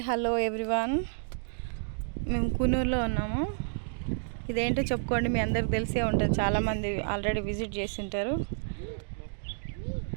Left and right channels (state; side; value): silent; left; digital silence